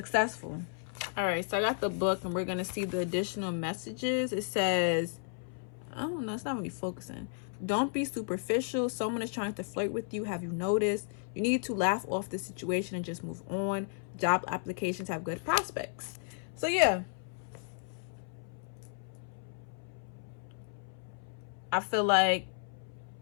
All right, so I got the book and we're going to see the additional messages. It says, I don't know, it's not really focusing. Don't be superficial. Someone is trying to flirt with you. Have you noticed? You need to laugh off the situation and just move on. Job applications have good prospects. So yeah, I feel like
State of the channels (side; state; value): right; silent; 55 dB below the other